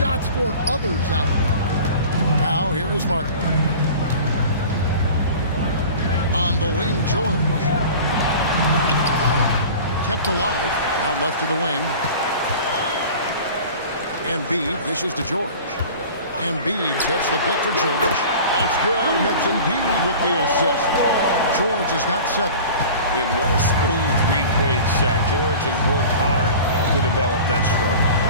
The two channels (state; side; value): inverted; both; correlation -0.39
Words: for others out there. Now, here is Martin. On the wing, George. Kept alive, out left to the wing. Embiid dishes to George. Embiid sets the pick for George. That's good, and it's Embiid with the assist. George has got 7. And what a smooth three-point shot. George has worked hard to develop that stroke.